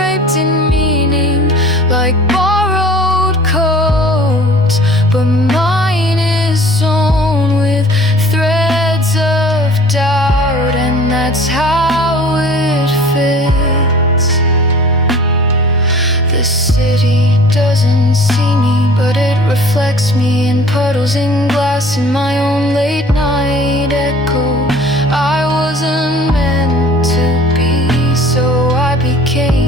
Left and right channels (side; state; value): both; normal; correlation 0.47